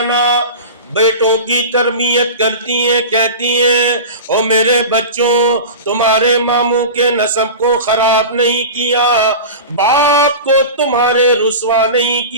عنہ بیٹوں کی تربیت کرتی ہیں، کہتی ہیں او میرے بچوں، تمہارے ماموں کے نسب کو خراب نہیں کیا، باپ کو تمہارے رسوا نہیں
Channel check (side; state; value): both; inverted; correlation -0.30